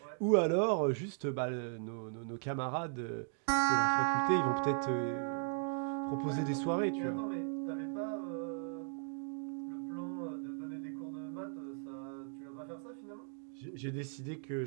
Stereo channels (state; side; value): silent; left; 53 dB below the other